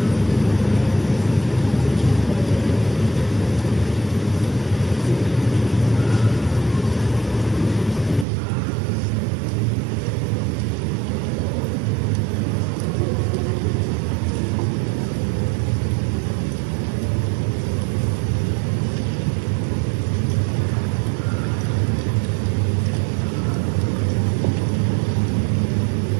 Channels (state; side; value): drops out; left; at 8.2 s